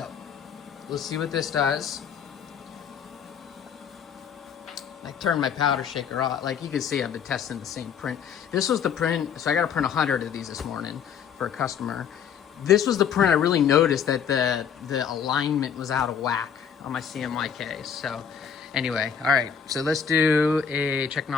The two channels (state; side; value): quieter; right; 7.5 dB